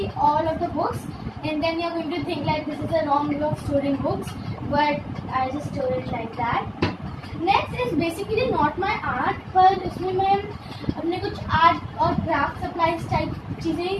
all of the books, and then you're going to think like this is a wrong way of storing books, but I just store it like that. Next is basically not my art, पर इसमें मैं अपने कुछ art और craft supplies type चीज़ें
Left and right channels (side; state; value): both; identical; correlation 1.00